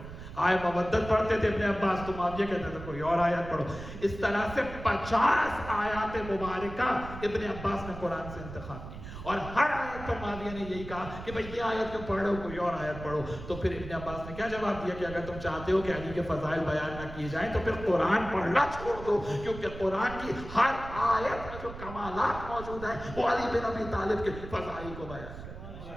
آیت مودت پڑھتے تھے ابن عباس تو معاویہ کہتا تھا کوئی اور آیت پڑھو۔ اس طرح سے 50 آیات مبارکہ ابن عباس نے قرآن سے انتخاب کی، اور ہر آیت پر معاویہ نے یہی کہا کہ بھئی یہ آیت کیوں پڑھ رہے ہو، کوئی اور آیت پڑھو۔ تو پھر ابن عباس نے کیا جواب دیا کہ اگر تم چاہتے ہو کہ علی کے فضائل بیان نہ کیے جائیں تو پھر قرآن پڑھنا چھوڑ دو، کیونکہ قرآن کی ہر آیت میں جو کمالات موجود ہیں وہ علی بن ابی طالب کے فضائل کو بیان کرتے ہیں۔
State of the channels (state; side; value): noise; right; rumble, 12 dB below the sound